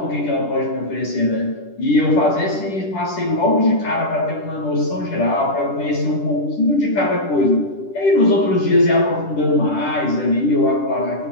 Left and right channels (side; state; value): right; late; 10 ms